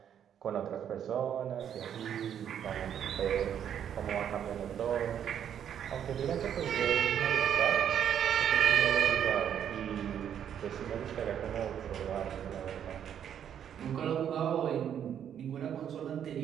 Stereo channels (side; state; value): left; quieter; 9.2 dB